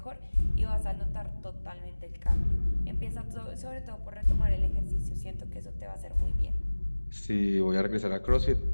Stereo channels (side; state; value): both; inverted; correlation -1.00